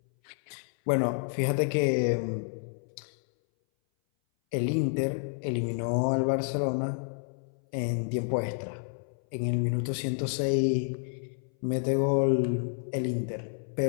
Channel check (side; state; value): right; silent; 58 dB below the other